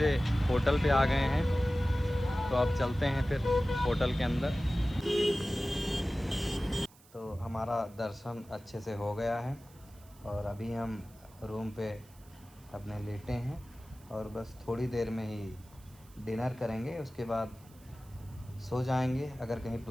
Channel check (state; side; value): noise; right; hiss, 26 dB below the sound